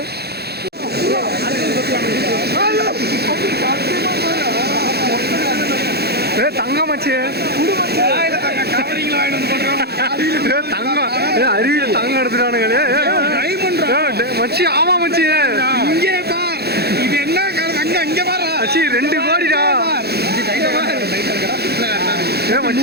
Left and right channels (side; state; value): left; late; 0.47 ms